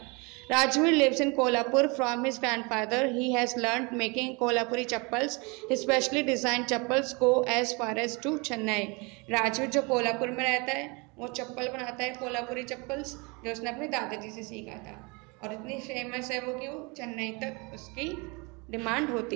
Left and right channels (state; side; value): quieter; left; 28.8 dB